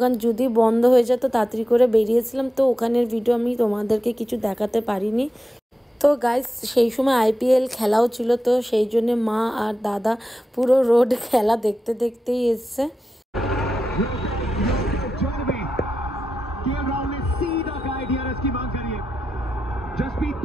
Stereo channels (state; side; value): normal; both; correlation 0.90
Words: যদি বন্ধ হয়ে যেত তাড়াতাড়ি করে বেরিয়েছিলাম। তো ওখানের ভিডিও আমি তোমাদেরকে কিছু দেখাতে পারিনি। তো গাইস সেই সময় IPL খেলাও ছিল, তো সেই জন্য মা আর দাদা পুরো রোড খেলা দেখতে দেখতেই এসছে। जसप्रीत